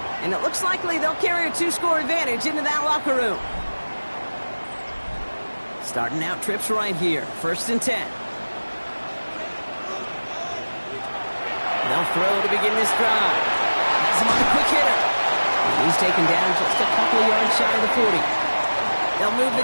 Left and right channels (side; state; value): both; inverted; correlation -1.00